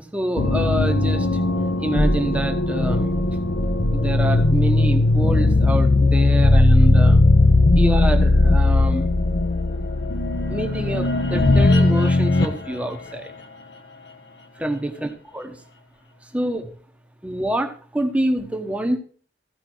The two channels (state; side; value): normal; both; correlation 0.88